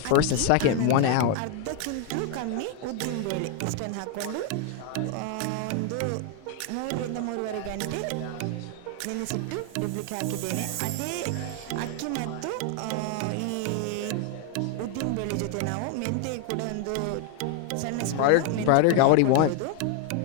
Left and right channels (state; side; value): different; both; correlation 0.01